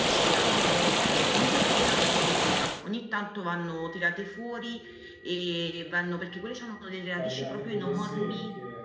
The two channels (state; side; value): identical; both; correlation 1.00